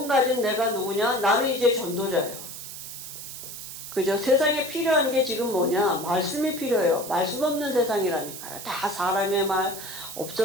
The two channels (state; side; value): noise; right; hiss, 10 dB below the sound